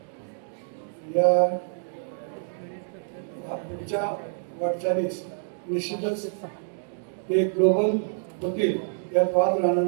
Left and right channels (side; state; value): left; silent; digital silence